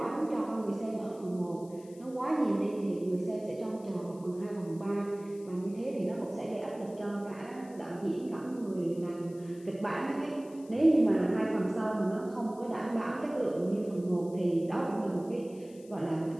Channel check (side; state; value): left; noise; hiss, 25 dB below the sound